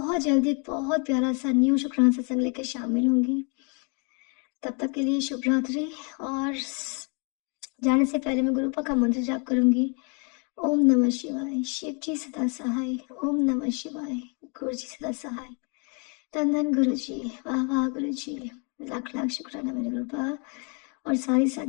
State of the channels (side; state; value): right; quieter; 35.9 dB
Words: जल्दी एक बहुत प्यारा सा न्यू शुक्राना सत्संग लेकर शामिल होंगी। तब तक के लिए शुभ रात्रि। और जाने से पहले मैं गुरुपा का मंत्र जाप करूंगी। ओम नमः शिवाय, शिव जी सदा सहाय। ओम नमः शिवाय, गुरु जी सदा सहाय। धन धन गुरु जी, वाह वाह गुरु जी, लाख लाख शुक्राना मेरे गुरुपा। और सारी